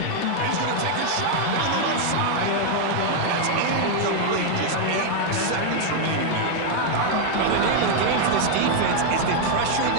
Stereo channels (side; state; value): both; different; correlation 0.00